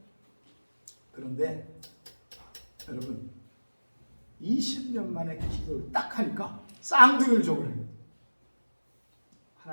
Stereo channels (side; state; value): both; inverted; correlation -1.00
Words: 여러분, 20년 만에 기도를 딱 하니까 쌍둥이를 줘버려요.